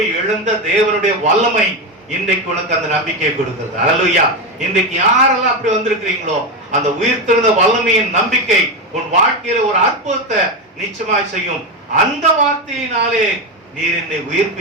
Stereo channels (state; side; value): normal; both; correlation 0.12